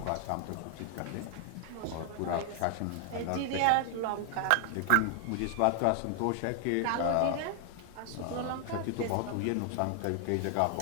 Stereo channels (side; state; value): both; different; correlation 0.00